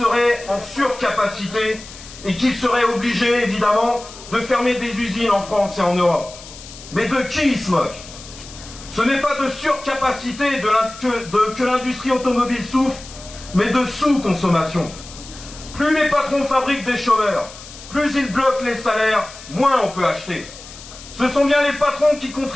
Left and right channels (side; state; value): left; noise; hiss, 16 dB below the sound